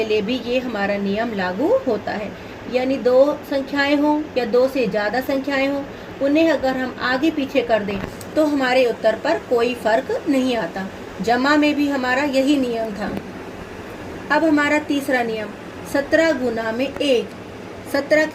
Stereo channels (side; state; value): both; identical; correlation 1.00